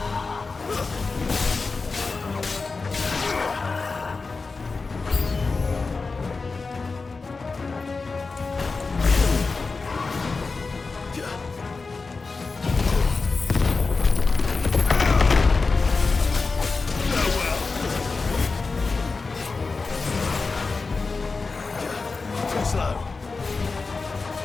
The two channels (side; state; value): right; quieter; 4.2 dB